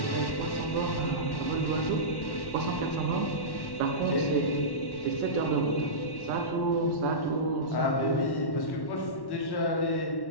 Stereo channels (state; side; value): late; right; 1.1 ms